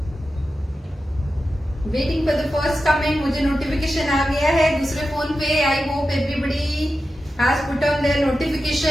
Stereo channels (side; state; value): both; normal; correlation 0.91